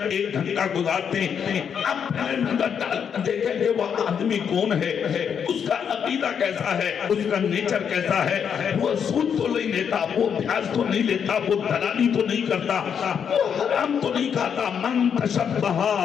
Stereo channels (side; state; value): right; quieter; 7.5 dB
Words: 1 گھنٹہ گزارتے ہیں، آپ پہلے نظر ڈال کر دیکھیں کہ وہ آدمی کون ہے، اس کا عقیدہ کیسا ہے، اس کا نیچر کیسا ہے۔ وہ سود تو نہیں لیتا، وہ بیاج تو نہیں لیتا، وہ دلالی تو نہیں کرتا، وہ حرام تو نہیں کھاتا۔ من تشبہ